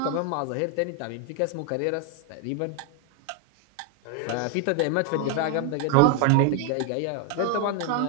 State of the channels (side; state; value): both; different; correlation 0.01